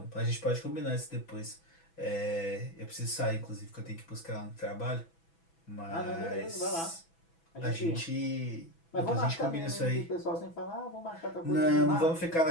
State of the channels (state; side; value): late; right; 6.0 ms